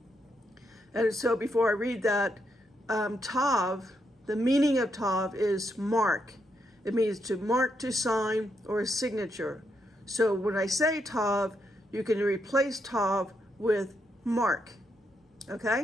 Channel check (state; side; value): normal; both; correlation 0.80